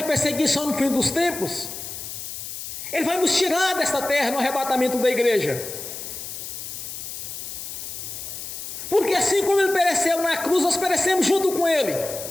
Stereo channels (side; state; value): left; noise; hiss, 8 dB below the sound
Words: perseguição no fim dos tempos, Ele vai nos tirar desta terra no arrebatamento da igreja. Porque assim como Ele pereceu na cruz, nós perecemos junto com Ele.